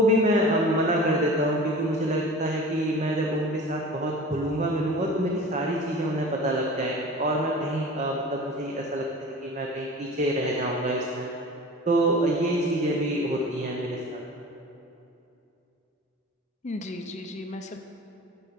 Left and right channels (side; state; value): both; normal; correlation 0.38